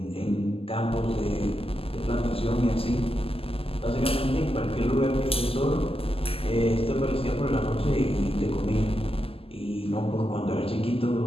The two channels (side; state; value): right; late; 0.28 ms